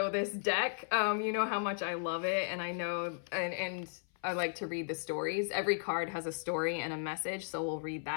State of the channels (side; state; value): right; silent; 54 dB below the other